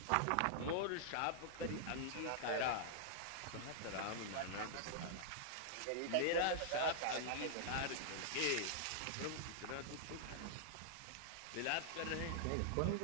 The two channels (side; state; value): both; different; correlation -0.01